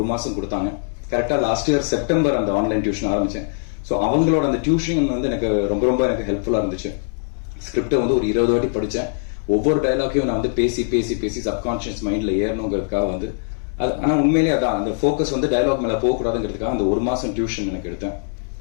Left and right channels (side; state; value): right; silent; digital silence